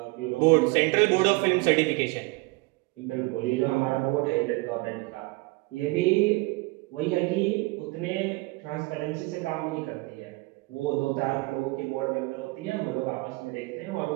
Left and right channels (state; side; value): quieter; left; 24.3 dB